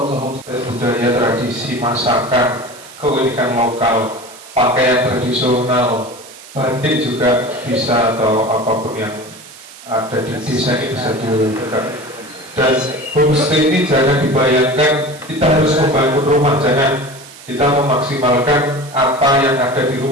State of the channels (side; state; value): right; noise; hiss, 19 dB below the sound